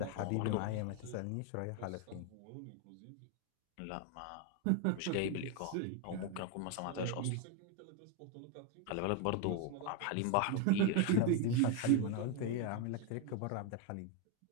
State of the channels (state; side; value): different; both; correlation 0.01